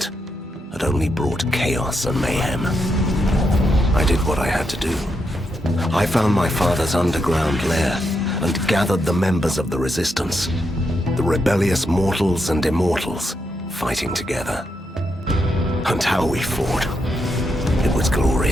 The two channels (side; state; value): both; normal; correlation 0.82